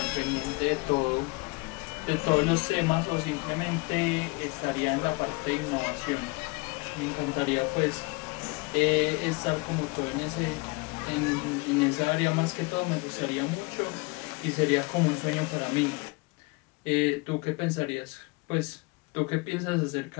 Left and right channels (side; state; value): right; quieter; 27.2 dB